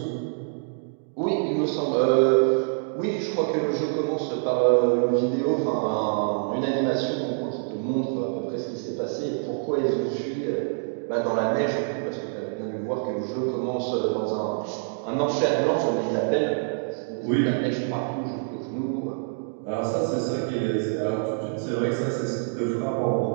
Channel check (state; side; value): silent; left; digital silence